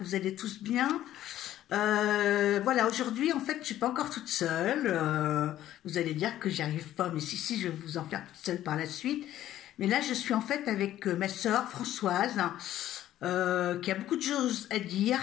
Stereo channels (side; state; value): right; quieter; 12.9 dB